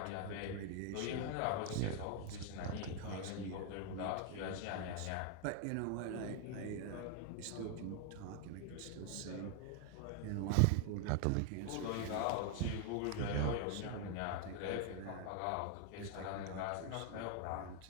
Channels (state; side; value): different; both; correlation 0.00